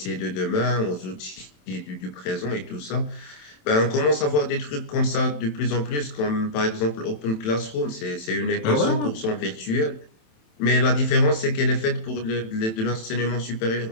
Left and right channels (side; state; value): right; late; 27 ms